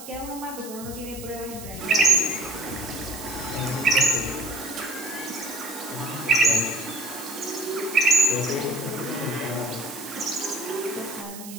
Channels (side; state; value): right; noise; hiss, 13 dB below the sound